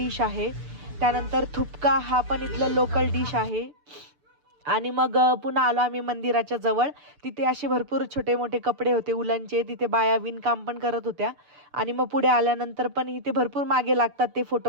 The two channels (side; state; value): left; late; 6.8 ms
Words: आहे. त्यानंतर थुपका हा पण इथलं लोकल डिश आहे. आणि मग पुन्हा आलो आम्ही मंदिराच्या जवळ. तिथे असे भरपूर छोटे मोठे कपडे होते उलनचे, तिथे बाया विणकाम पण करत होत्या. आणि मग पुढे आल्यानंतर पण इथे भरपूर मागे लागतात ते